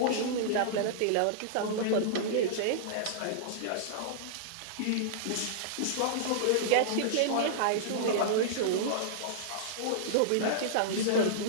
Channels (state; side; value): different; both; correlation -0.02